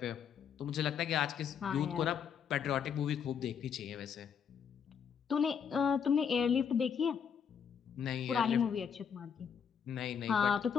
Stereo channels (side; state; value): right; quieter; 7.3 dB